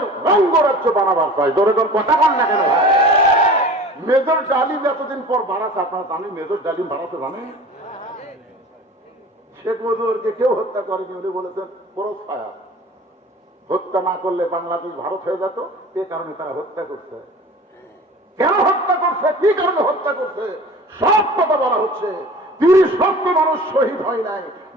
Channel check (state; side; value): normal; both; correlation 0.41